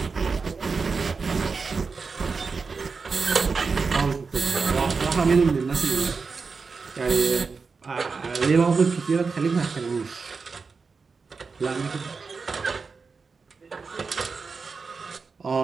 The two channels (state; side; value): quieter; left; 4.8 dB